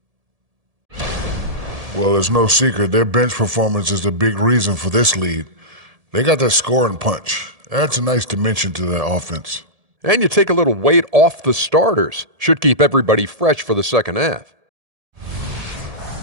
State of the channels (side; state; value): left; late; 1.7 ms